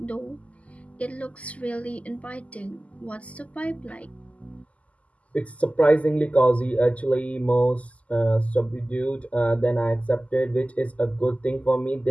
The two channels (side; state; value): right; late; 0.069 ms